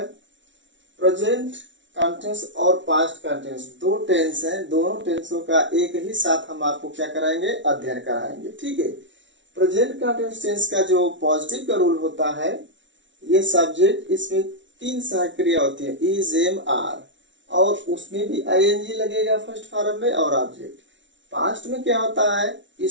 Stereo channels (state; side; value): late; left; 0.54 ms